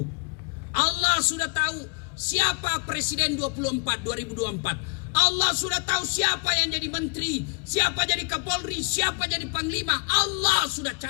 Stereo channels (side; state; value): right; quieter; 33.1 dB